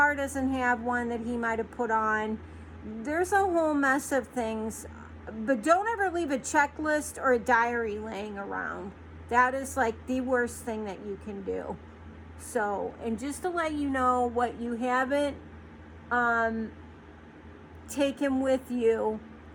doesn't have one that he might have put on. There's a whole mess of things, but don't ever leave a checklist or a diary laying around. That is like the worst thing that you can do. So, and just to let you know, what you haven't taken with you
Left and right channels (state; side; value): identical; both; correlation 1.00